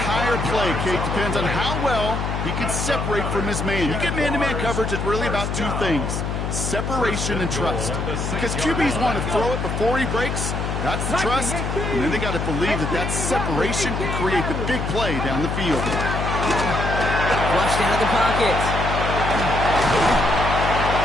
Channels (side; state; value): left; noise; hum, 2 dB below the sound